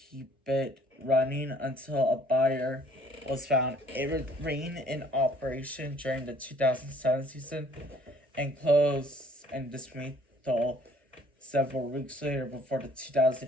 it running until a buyer was found. It remained in operation during the 2007 season and closed and dismantled several weeks later before the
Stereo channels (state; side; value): normal; both; correlation 0.58